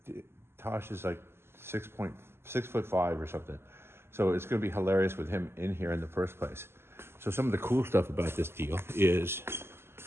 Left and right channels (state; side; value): late; left; 0.12 ms